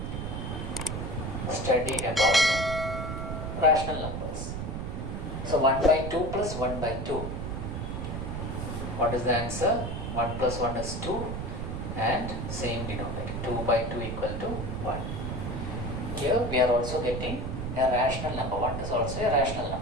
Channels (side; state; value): right; noise; rumble, 4 dB below the sound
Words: study about rational numbers. So 1 by 2 plus 1 by 2. What is the answer? 1 plus 1 is 2 and same denominator. 2 by 2 equal to 1. Here we are also getting a rational number. 1 is also a rational